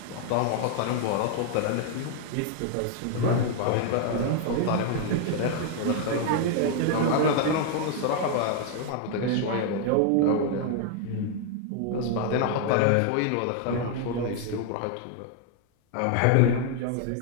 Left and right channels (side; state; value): both; different; correlation 0.00